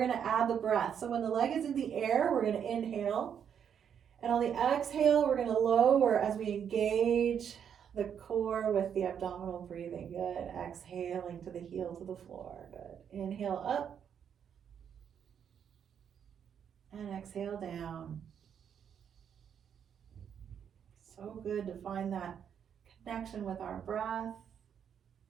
to add the breath. So when the leg is in the air, we're going to inhale. And on the exhale, we're going to lower as we engage the core with the abdominal breathing. Good. Exhaling to the heel to the floor. Good. Inhale up. And exhale down. So good to find that connection with our breath.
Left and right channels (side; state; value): left; quieter; 8.2 dB